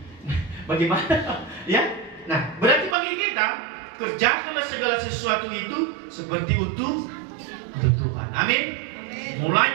Nah, bagaimana? Ya. Nah, berarti bagi kita, kerjakanlah segala sesuatu itu seperti untuk Tuhan. Amin.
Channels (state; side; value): drops out; left; at 3.0 s